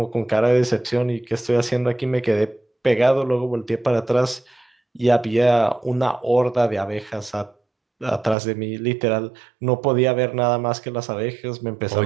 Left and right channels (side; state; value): left; drops out; at 8.3 s